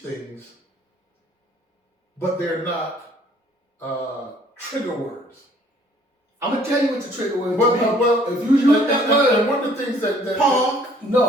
but they're not trigger words. I'm gonna tell you what the trigger word is. Well, if you use that word, and one of the things that Punk.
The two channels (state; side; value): normal; both; correlation 0.59